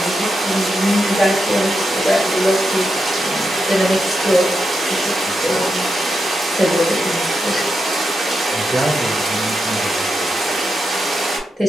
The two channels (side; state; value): both; normal; correlation 0.85